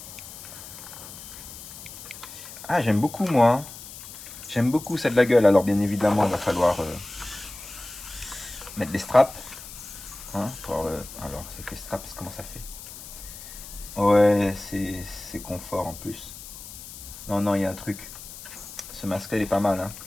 Ah, j'aime beaucoup, moi. J'aime beaucoup ça de la gueule. Alors, bien évidemment, il va falloir mettre les straps. Hein, alors, c'est que les straps, comment ça fait? Ouais, c'est confort en plus. Non, non, il y a un truc. Ce masque-là, il est pas mal. Hein.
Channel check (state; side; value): noise; left; hiss, 14 dB below the sound